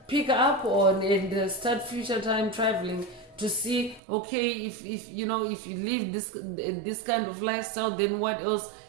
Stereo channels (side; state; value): left; drops out; at 4.0 s